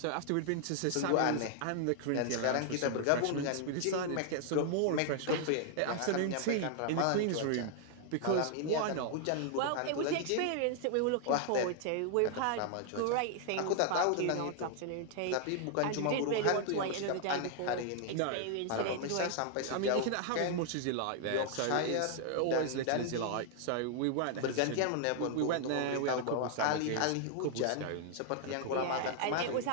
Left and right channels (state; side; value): different; both; correlation 0.00